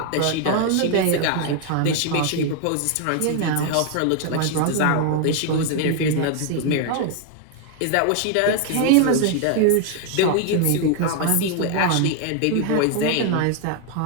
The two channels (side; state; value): both; different; correlation 0.00